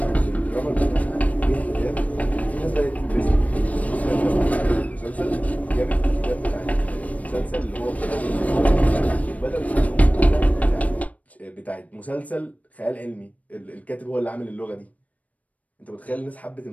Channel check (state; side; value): late; right; 0.069 ms